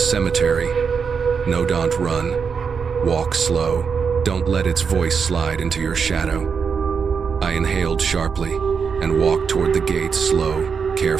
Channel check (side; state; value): left; quieter; 6.0 dB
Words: No, don't run. Walk slow. Don't let its voice slide into your shadow. I inhaled sharply and walked toward the gate, slow,